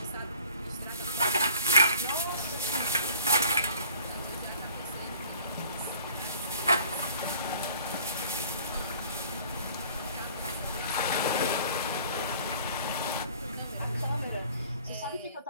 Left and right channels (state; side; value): inverted; both; correlation -0.51